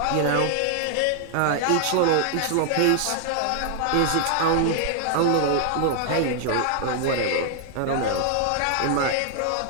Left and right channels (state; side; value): different; both; correlation 0.00